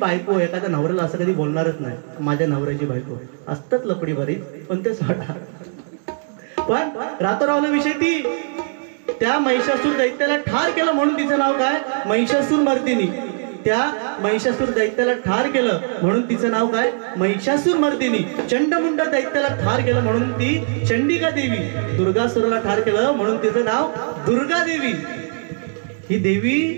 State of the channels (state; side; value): silent; left; digital silence